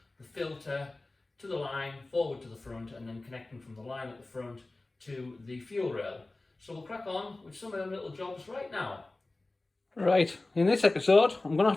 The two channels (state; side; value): quieter; right; 3.0 dB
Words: the filter to the line, forward to the front, and then connecting from the line at the front to the fuel rail. So we'll crack on with some of them little jobs right now. Right, in this episode I'm going to